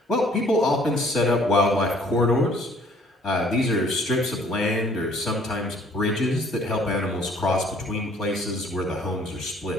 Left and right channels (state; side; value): normal; both; correlation 0.58